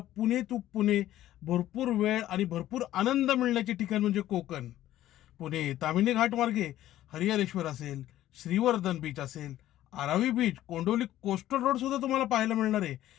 पुणे टू पुणे भरपूर वेळ आणि भरपूर आनंद मिळण्याचे ठिकाण म्हणजे कोकण. पुणे तामिनी घाट मार्गे हरिहरेश्वर असेल, श्रीवर्धन बीच असेल, आरावी बीच, कोंडोली कोस्टल रोड सुद्धा तुम्हाला पाहायला मिळणार आहे.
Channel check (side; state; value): right; quieter; 13.6 dB